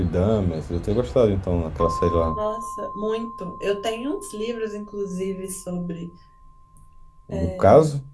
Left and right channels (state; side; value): identical; both; correlation 1.00